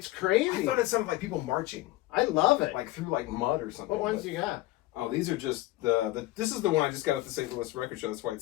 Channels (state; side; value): quieter; right; 17.7 dB